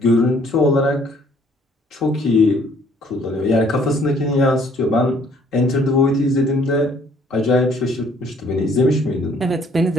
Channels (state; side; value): normal; both; correlation 0.61